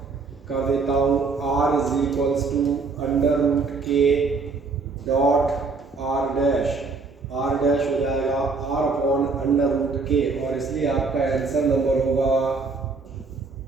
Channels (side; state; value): left; quieter; 4.2 dB